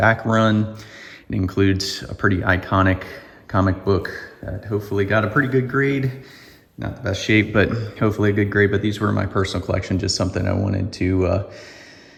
run. It includes a pretty iconic comic book that hopefully got a pretty good grade. Not the best shape, but hopefully a good grade. But these were my personal collection, just something I wanted to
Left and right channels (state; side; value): identical; both; correlation 1.00